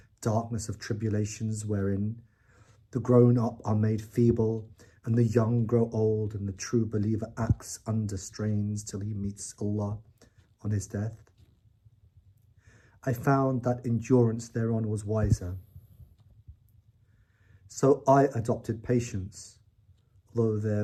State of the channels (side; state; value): both; identical; correlation 1.00